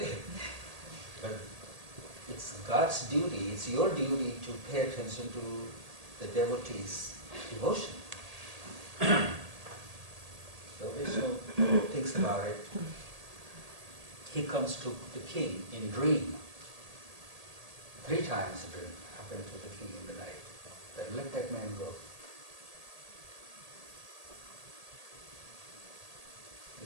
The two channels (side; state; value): left; late; 1.8 ms